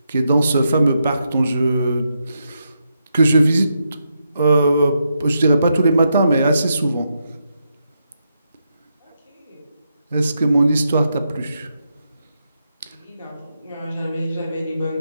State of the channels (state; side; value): inverted; both; correlation -0.83